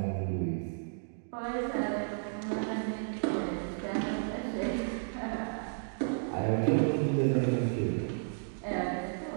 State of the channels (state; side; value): silent; left; digital silence